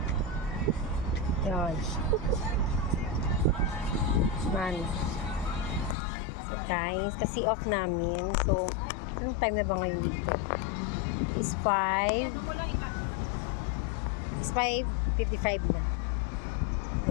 Yun. Man. So, guys, kasi off namin. So, anong time na ba ngayon dito? It's 5:55 na.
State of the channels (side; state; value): right; drops out; at 6.0 s